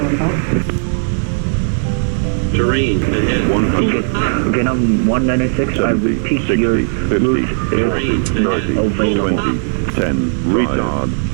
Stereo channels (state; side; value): silent; left; 60 dB below the other